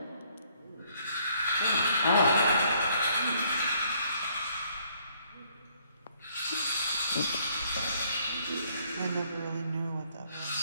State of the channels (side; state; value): both; inverted; correlation -0.65